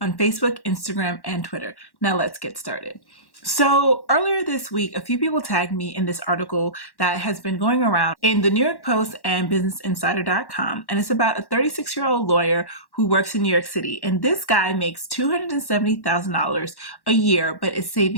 Facebook, Instagram, and Twitter. Now let's get started. So earlier this week, a few people tagged me in this article that has been going around in the New York Post and BusinessInsider.com. And it's about a 36-year-old lawyer who works in New York City. And this guy makes $270,000 a year, but is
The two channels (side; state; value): right; late; 1.1 ms